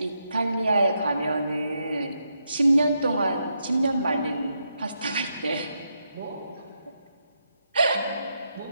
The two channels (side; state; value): both; inverted; correlation -0.81